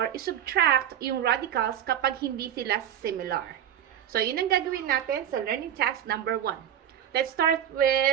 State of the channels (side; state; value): left; quieter; 10.2 dB